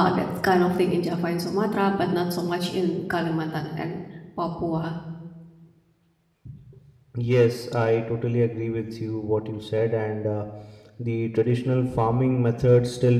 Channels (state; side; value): identical; both; correlation 1.00